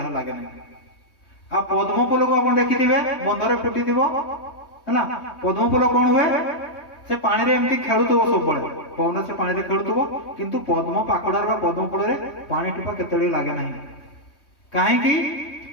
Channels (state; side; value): late; right; 3.2 ms